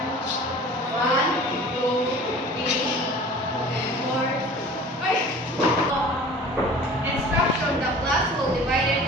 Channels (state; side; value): normal; both; correlation 0.43